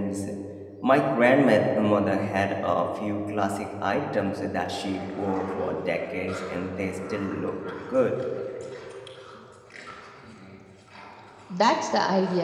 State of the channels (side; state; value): both; identical; correlation 1.00